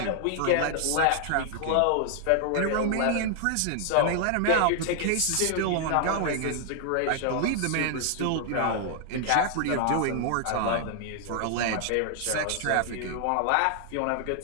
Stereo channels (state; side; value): different; both; correlation 0.00